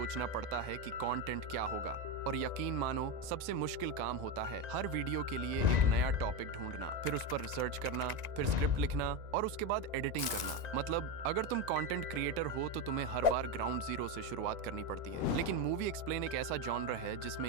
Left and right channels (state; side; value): late; left; 1.9 ms